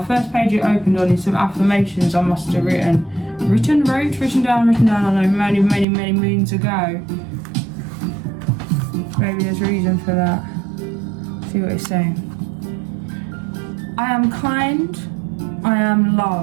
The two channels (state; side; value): drops out; left; at 5.9 s